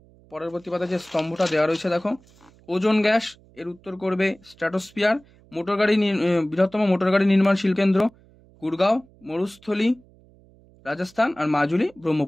পরবর্তী পাতা যে স্তম্ভটা দেওয়া রয়েছে, দেখো, ওজোন গ্যাস। এর উত্তর করবে স্ট্র্যাটোস্ফিয়ার। বৃহত্তম মোটরগাড়ি নির্মাণ শিল্পকেন্দ্র গুড়গাঁও, মরুস্থলী রাজস্থান, আর মাজুলি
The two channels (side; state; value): right; noise; hum, 28 dB below the sound